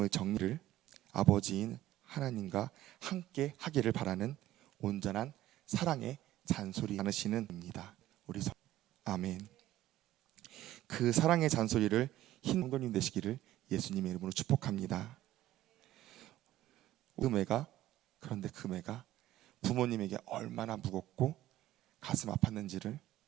정리를 아버지인 하나님과 함께 하기를 바라는 온전한 사랑의 잔소리 나누시는 입니다. 아멘. 그 사랑의 잔소리를 성도님 되시기를 예수님의 이름으로 축복합니다. 그런데 그 매가 부모님에게 얼마나 무겁고 가슴 아팠는지를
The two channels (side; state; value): left; quieter; 14.2 dB